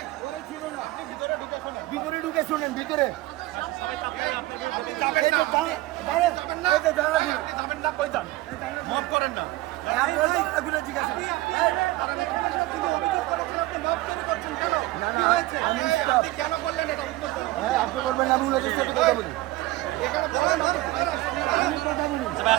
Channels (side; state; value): left; quieter; 18.4 dB